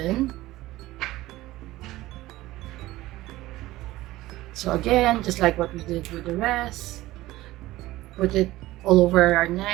So again, just like what we did with the rest, put it all over our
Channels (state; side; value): quieter; left; 17.2 dB